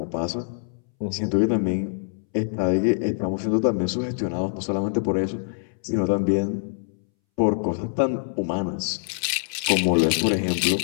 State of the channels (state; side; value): silent; right; 62 dB below the other